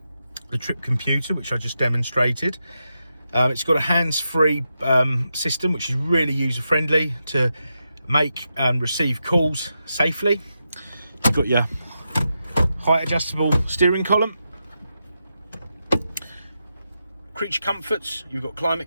the trip computer, which I just demonstrated. It's got a hands-free system, which is really user-friendly to make and receive calls safely. You've got your height adjustable steering column, creature comforts, you've got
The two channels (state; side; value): inverted; both; correlation -0.87